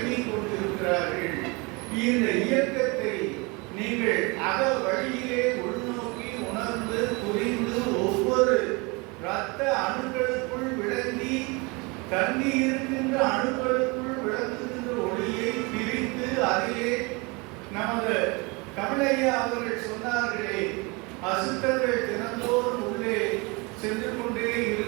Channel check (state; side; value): quieter; left; 27.7 dB